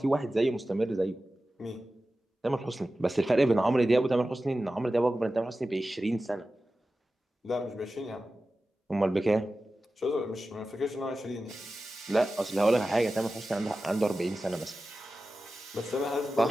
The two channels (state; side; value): normal; both; correlation 0.94